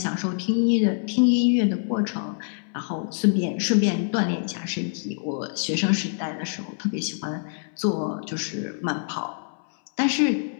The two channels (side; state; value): right; silent; 62 dB below the other